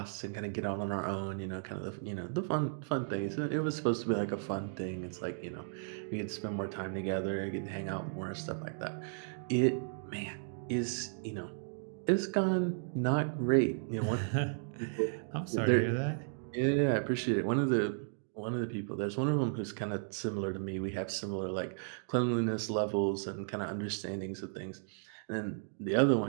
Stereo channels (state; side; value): silent; left; digital silence